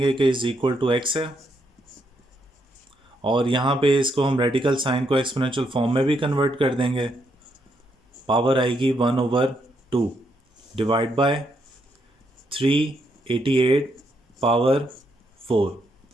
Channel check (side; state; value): both; normal; correlation 0.77